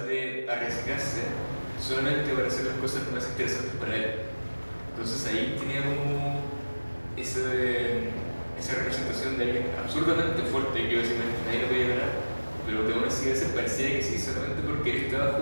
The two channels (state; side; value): inverted; both; correlation -1.00